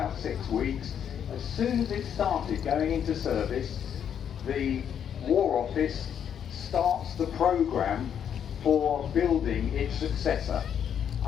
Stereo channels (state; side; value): quieter; right; 8.6 dB